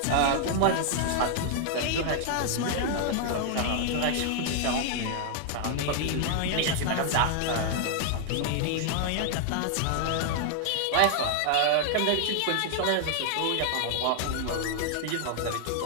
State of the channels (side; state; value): both; different; correlation 0.00